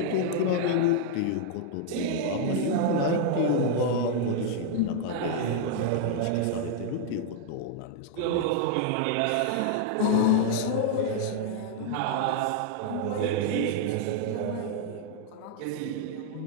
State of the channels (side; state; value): both; different; correlation 0.00